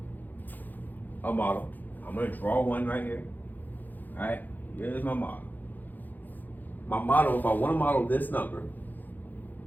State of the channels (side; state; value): right; late; 0.085 ms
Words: a model. I'm going to draw one right here. All right, here's my model. My model, if I want to model this number,